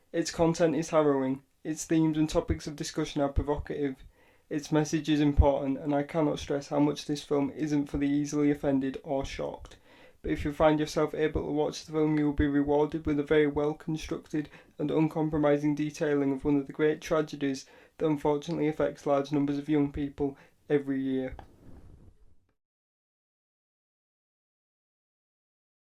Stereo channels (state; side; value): identical; both; correlation 1.00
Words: Its content is harrowing, its themes and topics of discussion are provocative, its message is important, and I cannot stress how much this film isn't for the easily offended or shocked. But if you find yourself able to watch the film, you will be rewarded with a very well-constructed and uncompromising detailing of one of the great tragedies that unfortunately affects large numbers of young people every year.